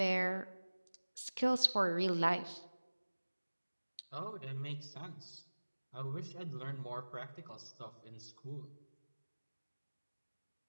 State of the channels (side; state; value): both; inverted; correlation -1.00